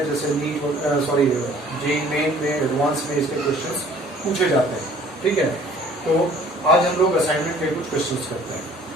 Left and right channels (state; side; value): normal; both; correlation 0.54